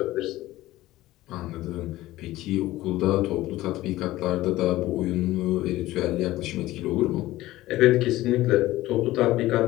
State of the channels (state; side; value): quieter; right; 16.6 dB